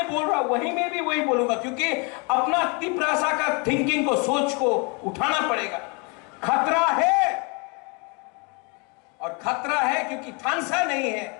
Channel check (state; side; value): quieter; right; 32.3 dB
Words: बोल रहा हूं वहीं में भी वही बोलूंगा, क्योंकि अपना तिपरासा का थिंकिंग को, सोच को उठाना पड़ेगा। खतरा है, और खतरा है क्योंकि थानसा नहीं